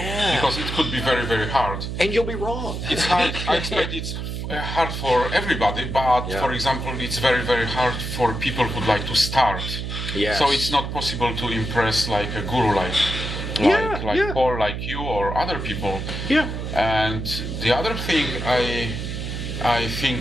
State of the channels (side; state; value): right; noise; hum, 5 dB below the sound